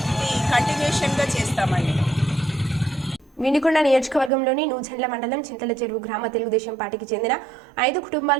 ఇది కంటిన్యూషన్గా చేస్తామండి. వినుకొండ నియోజకవర్గంలోని నూజెండ్ల మండలం చింతల చెరువు గ్రామ తెలుగుదేశం పార్టీకి చెందిన 5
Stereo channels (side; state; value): left; drops out; at 4.3 s